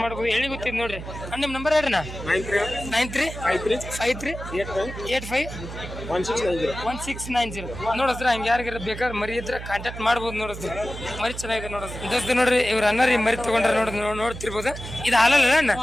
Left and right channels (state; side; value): noise; right; hum, 10 dB below the sound